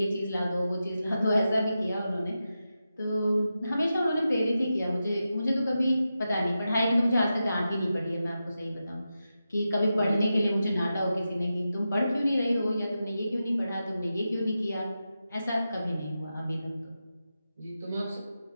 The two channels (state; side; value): inverted; both; correlation -0.90